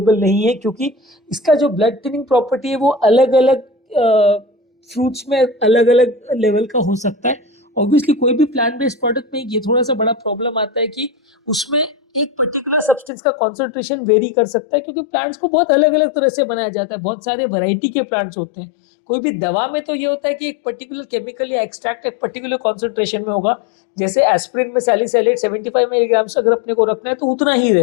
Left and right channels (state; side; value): drops out; right; at 13.1 s